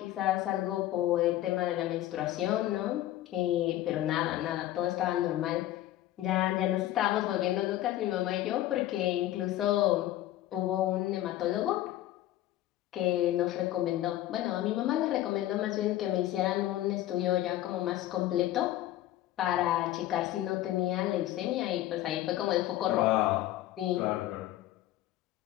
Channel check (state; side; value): quieter; right; 14.3 dB